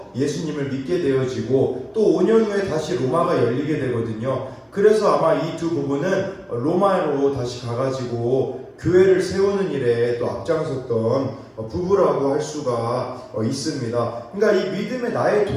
예수님을 믿게 되어지고, 또 5년 후에 다시 로마가 열리게 되거든요. 그래서 아마 이 두 부부는 로마로 다시 가가지고 교회를 세우는 일에 또 앞장섰던 부부라고 할 수가 있습니다. 그러니까 이 믿음의 나의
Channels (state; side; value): identical; both; correlation 1.00